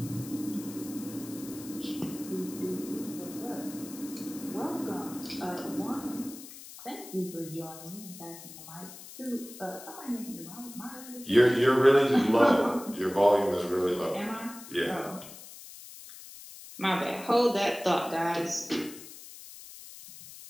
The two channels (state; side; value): noise; left; hiss, 15 dB below the sound